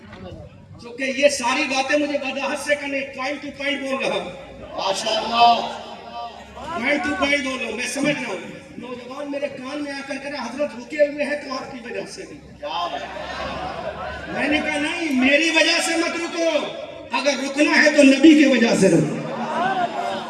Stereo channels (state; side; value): identical; both; correlation 1.00